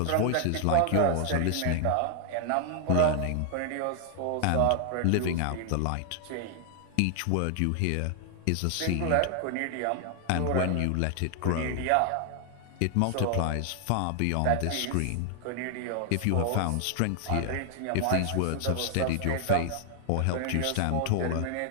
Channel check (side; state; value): both; different; correlation 0.00